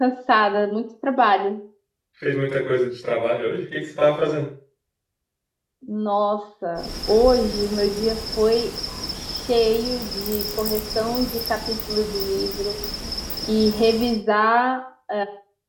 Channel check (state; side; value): identical; both; correlation 1.00